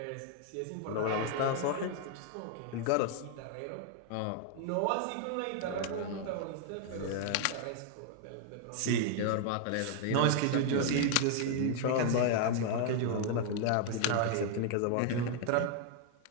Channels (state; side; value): different; both; correlation 0.00